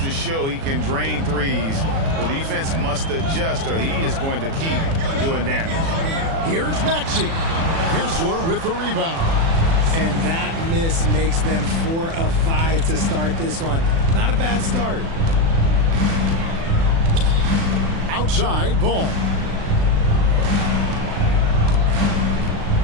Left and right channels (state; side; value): late; left; 36 ms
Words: show he can drain threes. The defense must adjust or he is going to keep doing damage. Here's Maxey. Kessler with the rebound. And that miss makes them 4 of 5 to start this one. Not a bad start. Outside, Ball.